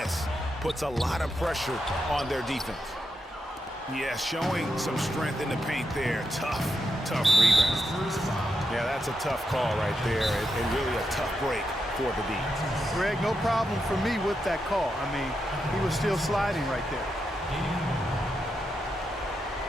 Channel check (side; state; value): both; normal; correlation 0.85